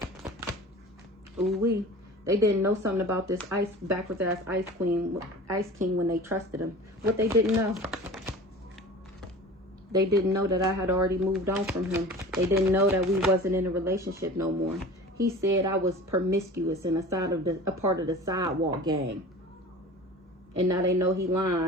Ooh-wee. They didn't know something about this backwards ass ice king when they trusted him. What they didn't know. They didn't know that I had already moved on from him. They didn't know that we wasn't in a relationship no more. He said I was promiscuous and a part of the sidewalk gang. And now they know he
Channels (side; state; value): both; normal; correlation 0.39